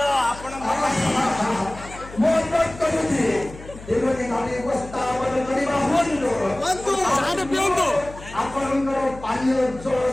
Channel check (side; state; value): left; noise; hum, 16 dB below the sound